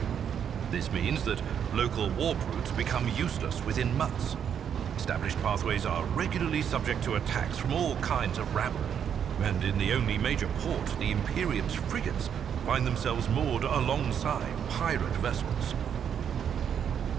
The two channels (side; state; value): left; quieter; 8.3 dB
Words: This means that local warp routes become useless within months. Established pathways are regularly subject to attacks from all kinds of rabble. And in the only major port, the Imperium's frigates find themselves moored alongside pirate vessels.